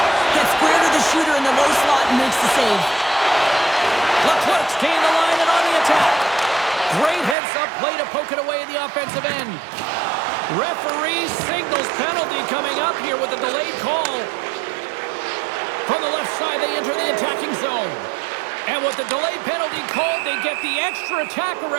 Gets square to the shooter in the low slot and makes the save. Leclerc's gained the line and on the attack. Great heads-up play to poke it away in the offensive end. Referee signals penalty coming up here with a delayed call. From the left side, they enter the attacking zone. And with the delayed penalty called, they get the extra attacker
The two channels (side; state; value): left; drops out; at 7.4 s